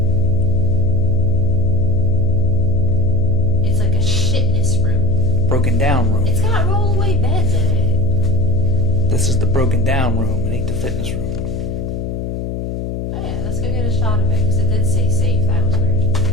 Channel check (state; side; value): noise; left; hum, 5 dB below the sound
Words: It's like a shitness room. Broken down room. It's got rollaway beds in it. This is the broken down room. It ain't the fitness room. Oh yeah, let's go get a shot of it, because it did say safe. That was weird.